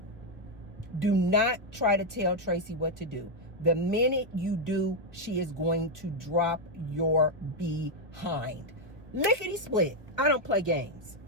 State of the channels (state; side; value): late; left; 1.2 ms